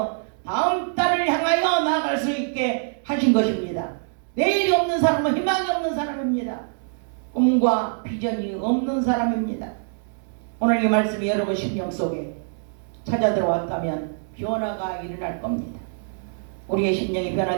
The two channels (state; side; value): silent; left; digital silence